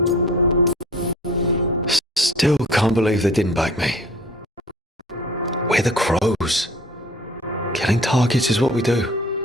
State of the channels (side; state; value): both; normal; correlation 0.48